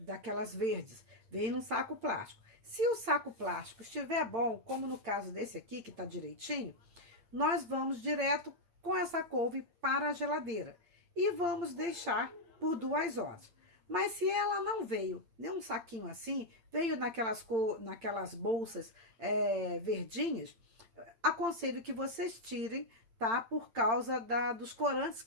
verdes, veio num saco plástico. Se o saco plástico estiver bom, como no caso desse aqui, que tá direitinho, nós vamos direto com essa couve para a geladeira e vamos deixar por 2 horas. Mas se ela não veio nem um saquinho assim, veio naquelas bolsas verdinhas, aconselho que vocês tirem, tá? Por causa dos corantes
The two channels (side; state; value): left; late; 8.8 ms